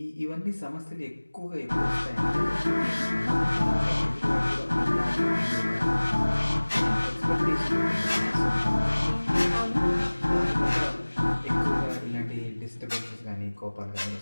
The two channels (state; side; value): inverted; both; correlation -1.00